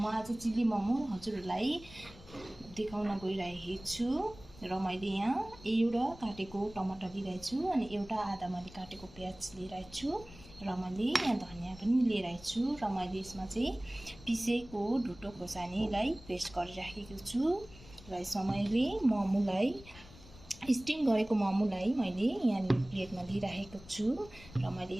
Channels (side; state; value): left; noise; rumble, 20 dB below the sound